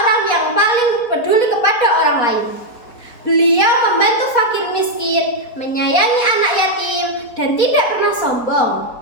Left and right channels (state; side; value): late; right; 4.2 ms